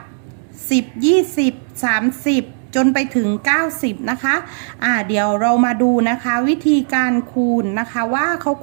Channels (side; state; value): left; silent; digital silence